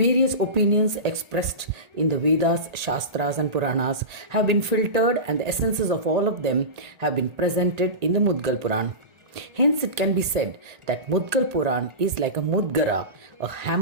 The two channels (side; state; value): left; late; 1.8 ms